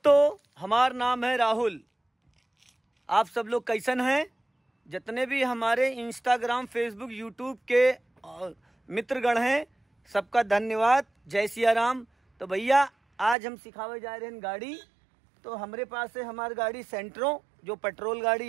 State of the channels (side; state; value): left; drops out; at 13.4 s